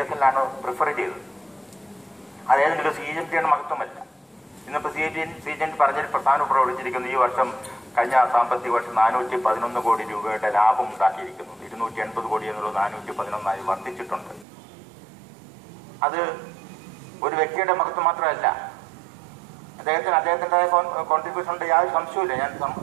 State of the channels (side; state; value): left; drops out; at 14.5 s